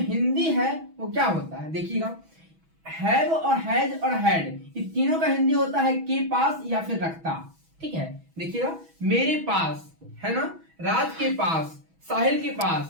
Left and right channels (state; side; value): late; left; 6.1 ms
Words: है वो क्या होता है? देखिएगा, हैव और हैज और हैड, इन तीनों का हिंदी होता है के पास या फिर रखता। ठीक है, देखिएगा, मेरे पास है ना, राज के पास, साहिल के